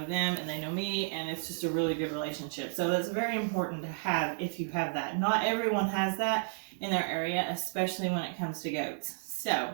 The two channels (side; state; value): left; silent; digital silence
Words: them, and they know me, and it's just a really good relationship. So that's very important to have if you have that. Not everyone has that in their area, especially when it comes to goats. So